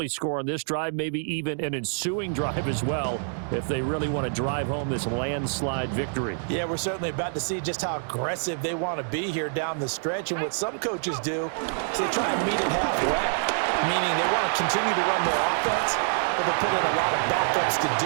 score on this drive, maybe even an ensuing drive as well, if they really want to drive home this landslide victory. Yeah, we're certainly about to see just how aggressive they want to be here down the stretch. And what some coaches do is they try and meet it halfway, meaning they want to continue to run their offense, but they put in a lot of backups to do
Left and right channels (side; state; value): left; silent; digital silence